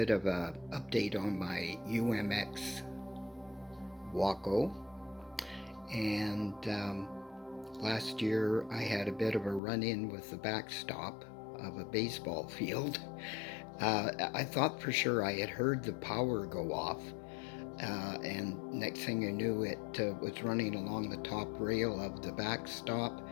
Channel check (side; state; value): right; drops out; at 9.6 s